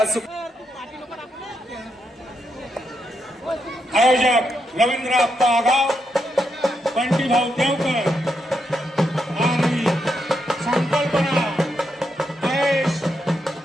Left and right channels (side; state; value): both; normal; correlation 0.82